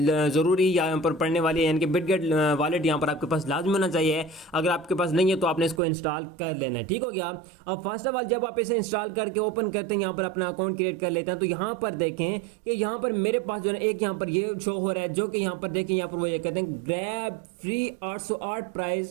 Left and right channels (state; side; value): drops out; left; at 5.8 s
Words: जरूरी यहां पर पड़ने वाली है, यानी कि बिटगेट वॉलेट यहां पर आपके पास लाजमी होना चाहिए। अगर आपके पास नहीं है तो आपने इसको इंस्टॉल कर लेना है। ठीक हो गया। अब फर्स्ट ऑफ ऑल जब आप इसे इंस्टॉल करके ओपन करते हैं, यहां पर अपना अकाउंट क्रिएट कर लेते हैं, तो यहां पर देखें कि यहां पर मेरे पास जो है एक यहां पर ये शो हो रहा है, जो कि यहां पर देखें यहां पर वो ये कहते हैं grab free 808